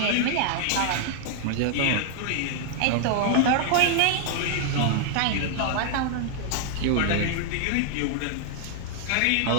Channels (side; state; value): both; different; correlation 0.00